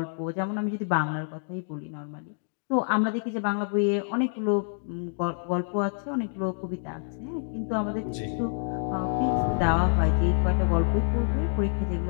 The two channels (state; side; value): silent; right; digital silence